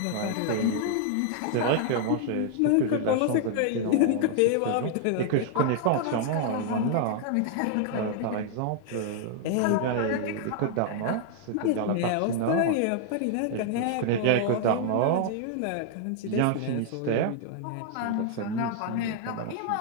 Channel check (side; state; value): both; different; correlation 0.00